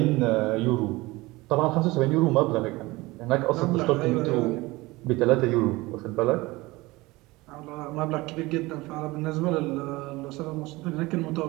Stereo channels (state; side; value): quieter; left; 21.2 dB